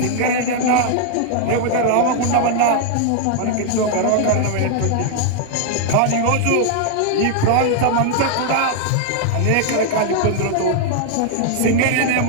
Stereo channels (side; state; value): both; different; correlation 0.00